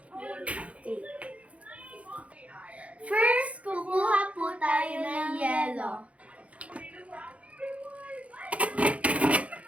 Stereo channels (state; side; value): late; left; 0.064 ms